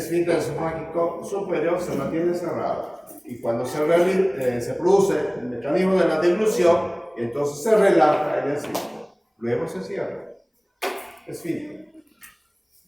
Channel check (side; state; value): both; identical; correlation 1.00